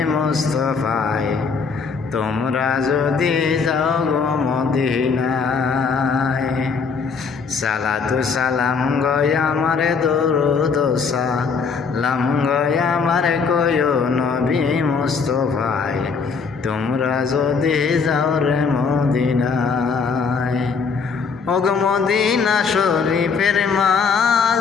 মুস্তফায় তোমরা যদি যাও গো মদিনায়। সালাতু সালাম গয়া মারে দুরুদ সালাম গয়া মারে কয়ো নবী মুস্তফায় তোমরা যদি যাও রে মদিনায়। ওগ মদিনা শরীফের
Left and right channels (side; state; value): right; quieter; 5.4 dB